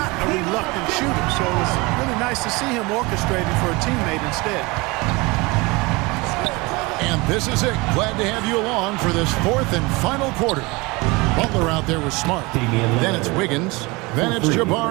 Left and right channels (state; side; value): quieter; left; 24.6 dB